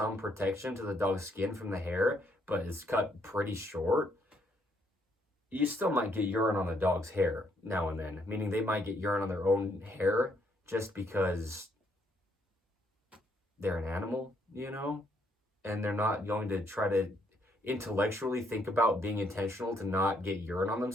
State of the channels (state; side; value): normal; both; correlation 0.71